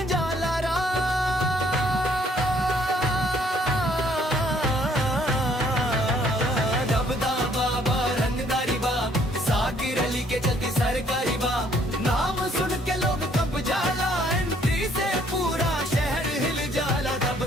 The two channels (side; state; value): both; normal; correlation 0.64